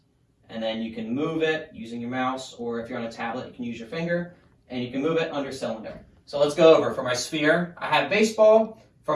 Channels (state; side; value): identical; both; correlation 1.00